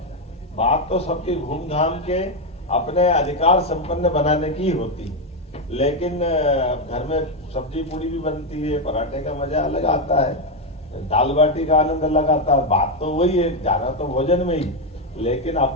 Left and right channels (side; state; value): both; normal; correlation 0.06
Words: बात तो सबकी घूम घाम के अपने अधिकार संपन्न बनाने की होती, लेकिन घर में सब्जी पूड़ी भी बनती है, पराठे का मजा अलग आता है, दाल बाटी का आनंद अलग आता है। बात तो वही है, जाना तो भोजन में ही, लेकिन